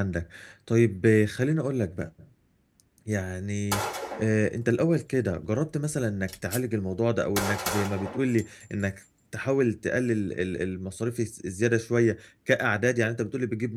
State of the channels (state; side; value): identical; both; correlation 1.00